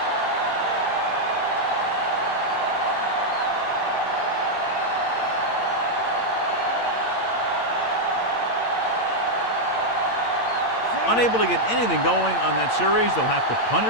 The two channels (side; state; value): right; late; 8.7 ms